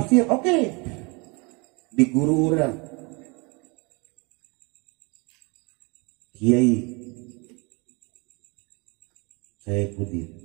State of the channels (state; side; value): quieter; left; 29.3 dB